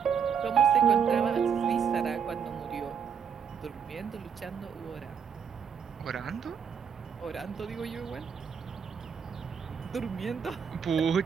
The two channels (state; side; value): quieter; left; 7.1 dB